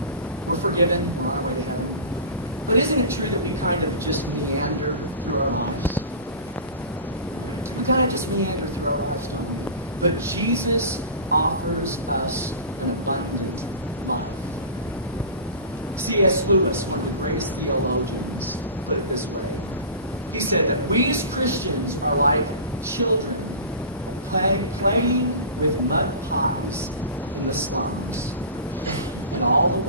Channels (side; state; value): both; inverted; correlation -0.34